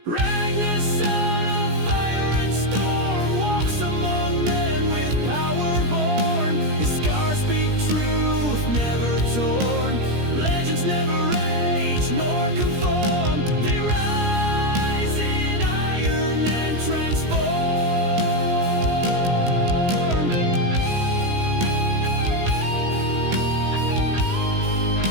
Ragnar, son of fire and storm, walks among men with power born. His scars speak truth, never torn. Legends never age nor conform. They rise in iron and transform.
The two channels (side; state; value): left; late; 17 ms